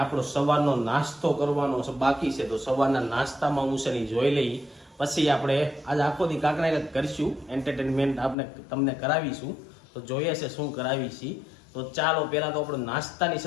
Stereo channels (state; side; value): drops out; right; at 8.3 s